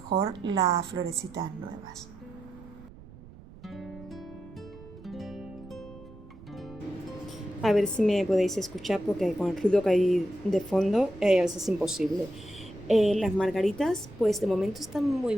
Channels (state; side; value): noise; right; rumble, 19 dB below the sound